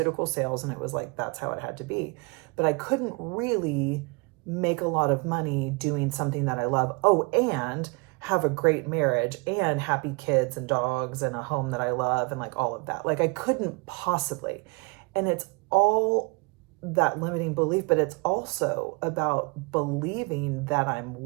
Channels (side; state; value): left; quieter; 29.9 dB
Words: sales, and it was that's how it had to be. But I couldn't really make a lot of money doing something that I love. Oh, and have a great marriage and happy kids and dogs and a home that I love and all of that. I couldn't possibly. And it's all that limiting belief, but it's also about believing that I'm